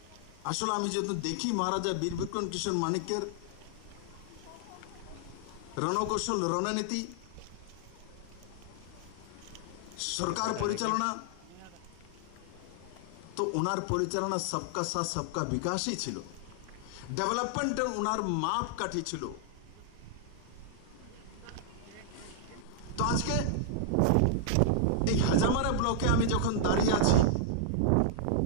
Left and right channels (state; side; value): different; both; correlation -0.01